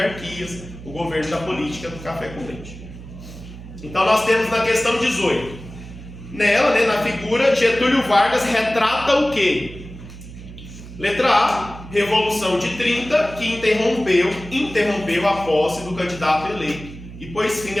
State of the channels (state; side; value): noise; right; hum, 14 dB below the sound